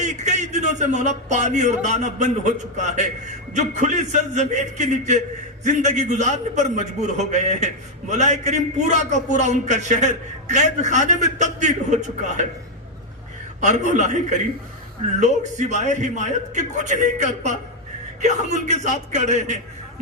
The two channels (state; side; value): normal; both; correlation 0.02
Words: دنوں سے مولا پانی اور دانہ بند ہو چکا ہے، جو کھلی سرزمین کے نیچے زندگی گزارنے پر مجبور ہو گئے ہیں۔ مولا کریم پورا کا پورا ان کا شہر قید خانے میں تبدیل ہو چکا ہے، اور مولا کریم لوگ سوائے حمایت کے کچھ نہیں کر پا کہ ہم ان کے ساتھ کھڑے ہیں۔